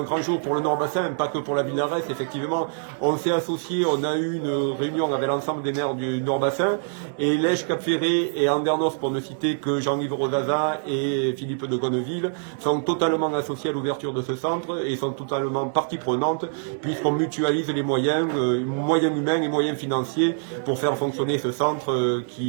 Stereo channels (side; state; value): left; silent; digital silence